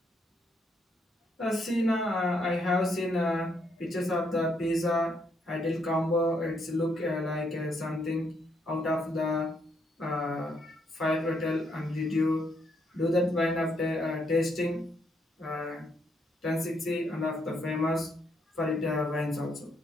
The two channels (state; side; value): normal; both; correlation 0.74